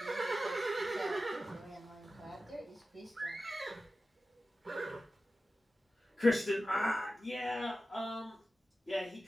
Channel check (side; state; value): both; normal; correlation 0.94